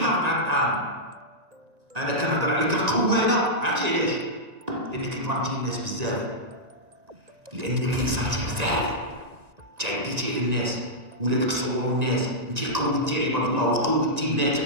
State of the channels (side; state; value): left; late; 1.9 ms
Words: على الطعام. انا كنهضر عليك القواده، عرفتي علاش؟ لانك ظلمتي الناس بزاف، لانك انصرتي بزاف، تعديتي على الناس، ولادك صوروا الناس، انت قودتي عباد الله وقودتي